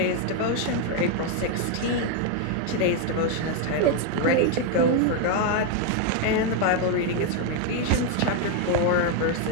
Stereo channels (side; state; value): both; different; correlation 0.01